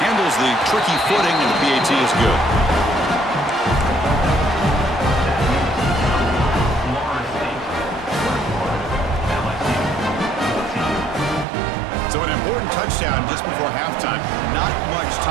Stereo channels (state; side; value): drops out; left; at 11.5 s